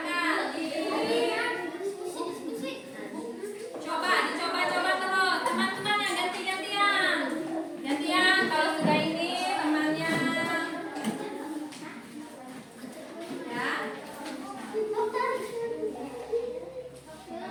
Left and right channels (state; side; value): identical; both; correlation 1.00